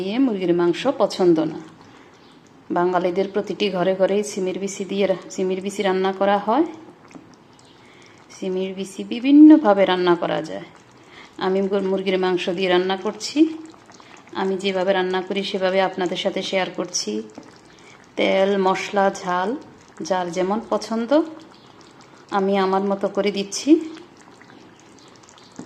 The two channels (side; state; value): both; identical; correlation 1.00